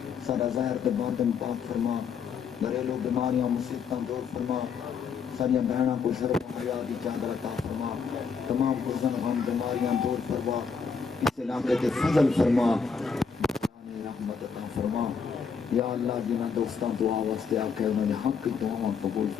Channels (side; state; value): right; quieter; 5.9 dB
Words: سارا ظاہر تے باطن پاک فرما، گھریلو بیماریاں مصیبتاں دور فرما، ساریا بہنوں کو شرم و حیا کی چادر عطا فرما، تمام حزن غم بیماریاں دور فرما، اس علاقے تے فضل فرما، رحمت عطا فرما۔ یا اللہ جنہ دوستاں دعا واسطے آکے انہوں نے حق کی دعاواں قبول